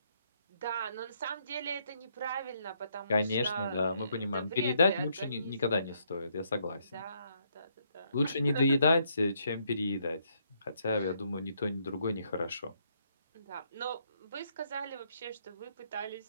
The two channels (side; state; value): both; inverted; correlation -0.73